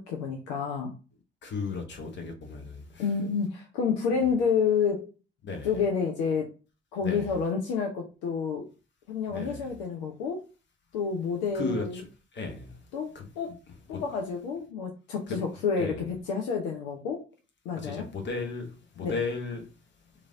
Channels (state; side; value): quieter; right; 5.3 dB